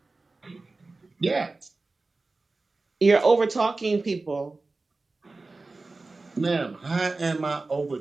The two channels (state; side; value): quieter; left; 3.5 dB